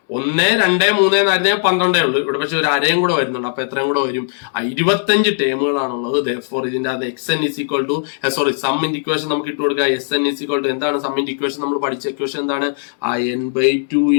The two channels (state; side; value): silent; right; digital silence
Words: 1, 2, 3 എന്നായിരുന്നേ 12 ഉള്ളൂ. ഇവിടെ പക്ഷെ ഒരു അരയും കൂടെ വരുന്നുണ്ട്. അപ്പൊ എത്രയും കൂടെ വരും? 25 ടേമുകളാണുള്ളത്. Therefore ഇതിന്റെ അത് xn ഈസ് ഈക്വൽ ടു സമ്മിന്റെ ഇക്വേഷൻ നമുക്ക് ഇട്ട് കൊടുക്കുക. Sn ഈസ് ഈക്വൽ ടു എന്താണ് സമ്മിന്റെ ഇക്വേഷൻ? നമ്മൾ പഠിച്ച ഇക്വേഷൻ എന്താണ്? n/2